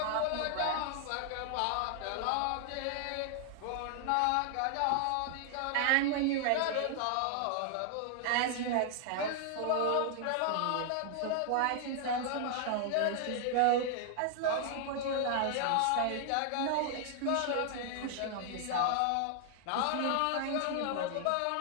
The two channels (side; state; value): both; different; correlation 0.00